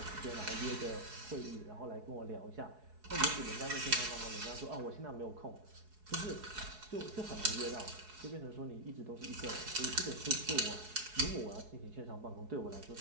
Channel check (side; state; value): left; late; 4.7 ms